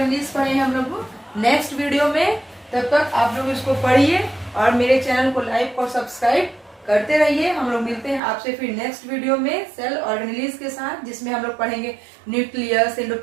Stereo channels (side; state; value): left; drops out; at 8.2 s